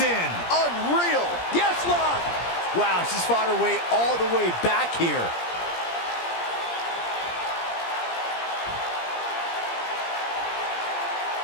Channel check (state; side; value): late; right; 17 ms